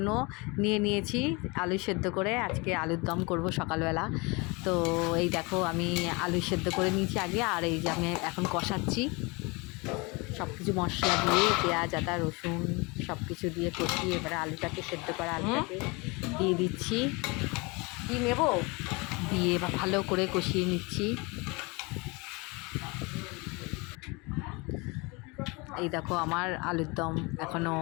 নিয়েছি। আলু সেদ্ধ করে আজকে আলুর দম করব সকালবেলা। তো এই দেখো আমি আলু সেদ্ধ করে নিয়েছি আগে, আর এই যে আমি এখন কষাচ্ছি সব কিছু মশলা দিয়ে, পেঁয়াজ আদা রসুন সব কিছু দিয়ে কষিয়ে এবারে আলুটাকে সেদ্ধ করা আলুটাকে দিয়ে দিচ্ছি। কি নেব দিয়ে ভালো করে কষিয়ে নিচ্ছি। এই দেখো আমার আলুর দম এখনও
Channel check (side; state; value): right; quieter; 27.3 dB